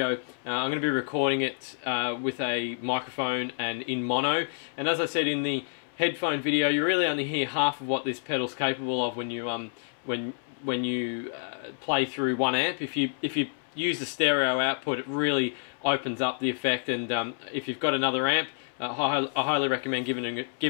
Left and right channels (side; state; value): right; silent; 59 dB below the other